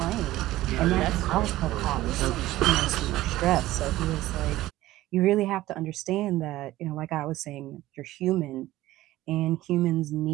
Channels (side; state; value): left; quieter; 16.1 dB